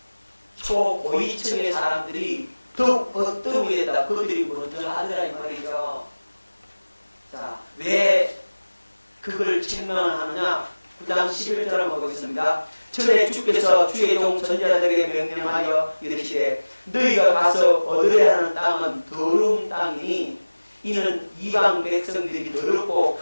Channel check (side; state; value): both; inverted; correlation -1.00